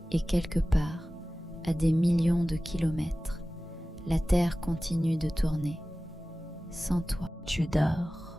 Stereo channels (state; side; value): normal; both; correlation 0.97